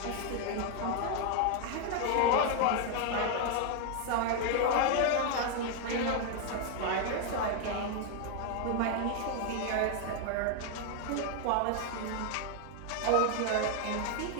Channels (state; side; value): different; both; correlation 0.00